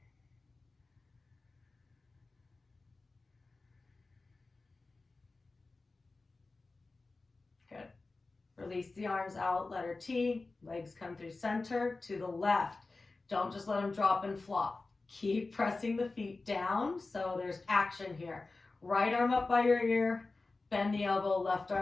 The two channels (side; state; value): right; quieter; 3.6 dB